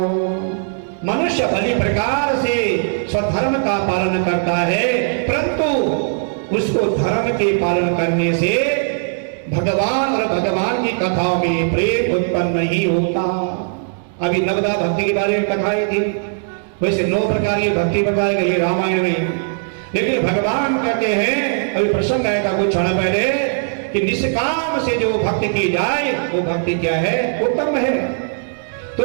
मनुष्य भली प्रकार से स्वधर्म का पालन करता है, परंतु उसको धर्म के पालन करने से भगवान और भगवान की कथाओं में प्रेम उत्पन्न नहीं होता। अभी नवदा भक्ति के बारे में कथाएं थी, वैसे 9 प्रकार की भक्ति बताई गई रामायण में। लेकिन भगवान कहते हैं, अभी प्रसंग आया था कुछ क्षण पहले, कि निष्काम से जो भक्ति की जाए वो भक्ति क्या है? उत्तम है।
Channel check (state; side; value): silent; left; digital silence